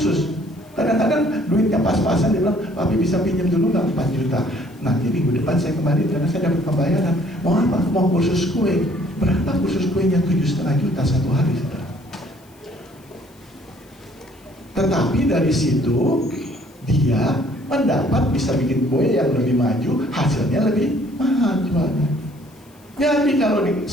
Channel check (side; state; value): left; noise; hiss, 30 dB below the sound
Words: Kadang-kadang duitnya pas-pasan, dia bilang, Papi bisa pinjam dulu nggak 4 juta. Nanti minggu depan saya kembali karena saya dapat pembayaran. Mau apa? Mau kursus kue. Berapa kursus kuenya? 7,5 juta satu hari, saudara. Tetapi dari situ dia mendapat bisa bikin kue yang lebih maju, hasilnya lebih mahal jualnya. Jadi kalau di